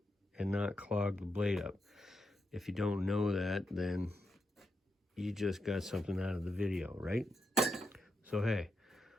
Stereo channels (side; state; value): both; normal; correlation 0.84